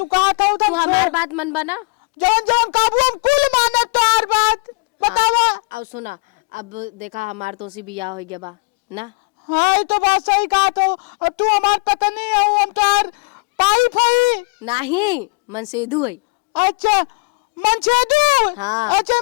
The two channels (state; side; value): quieter; right; 32.3 dB